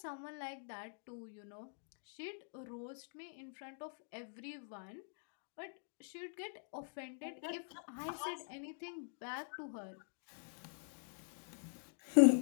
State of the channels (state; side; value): silent; right; digital silence